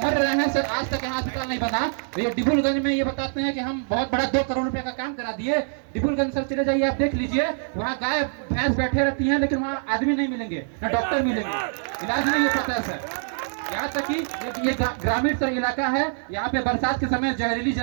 मर रहे हैं सर, आज तक यहाँ अस्पताल नहीं बना। तो ये डिब्रूगंज में ये बताते हैं कि हम बहुत बड़ा 2 करोड़ रुपए का काम करा दिए। डिब्रूगंज सर चले जाइए, आप देख लीजिए, वहाँ गाय भैंस बैठे रहती हैं, लेकिन वहाँ आदमी नहीं मिलेंगे, ना डॉक्टर मिलेंगे, इलाज नहीं हो पाता है सर। यहाँ तक कि ये ग्रामीण सर इलाका है, यहाँ पे बरसात के समय जहरीली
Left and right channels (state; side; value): silent; left; digital silence